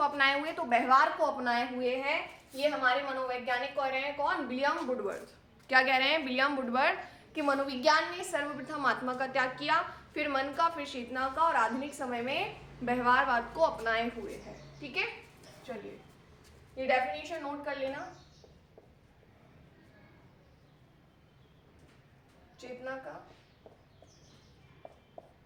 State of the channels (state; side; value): identical; both; correlation 1.00